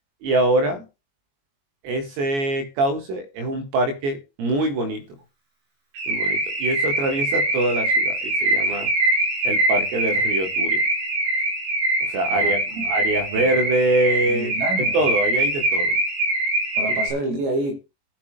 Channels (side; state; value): left; late; 22 ms